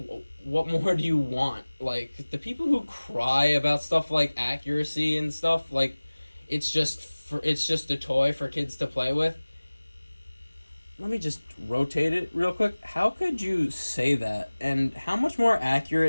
more do you want? Like, the people who cry about stuff like accuracy and stuff, like, it's just a toy for kids to play with. Let me just rotate it real quick. How could you say that? And how much more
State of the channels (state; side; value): inverted; both; correlation -1.00